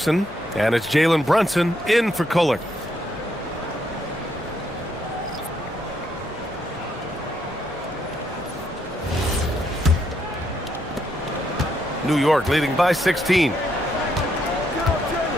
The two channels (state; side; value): normal; both; correlation 0.75